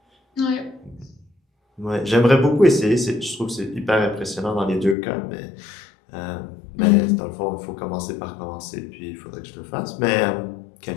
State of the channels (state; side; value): drops out; right; at 5.0 s